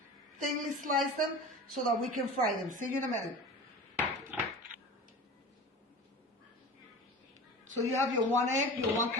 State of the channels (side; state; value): both; normal; correlation 0.35